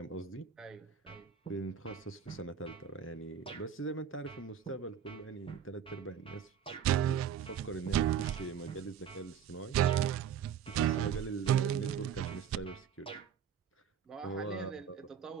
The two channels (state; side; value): quieter; left; 8.2 dB